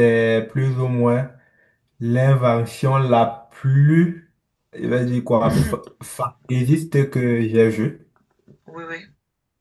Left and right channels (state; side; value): identical; both; correlation 1.00